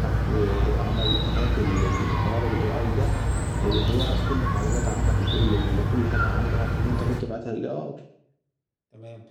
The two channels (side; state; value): both; identical; correlation 1.00